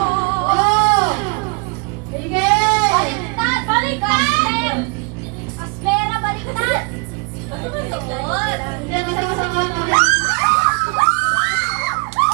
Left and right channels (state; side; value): quieter; left; 32.5 dB